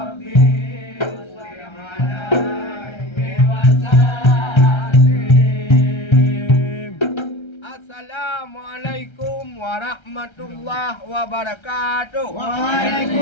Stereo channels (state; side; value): late; right; 1.3 ms